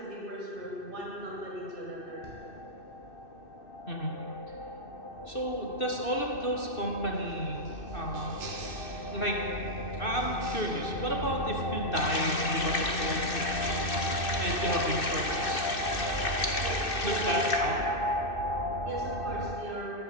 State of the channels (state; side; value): late; right; 2.6 ms